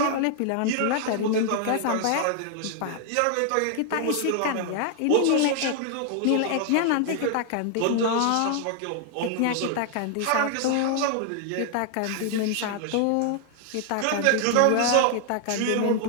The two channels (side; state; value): both; different; correlation 0.00